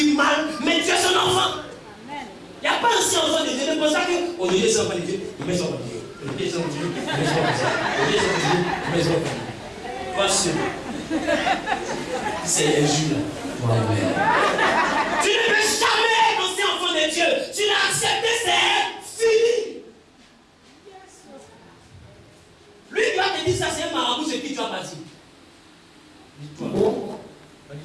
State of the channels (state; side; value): identical; both; correlation 1.00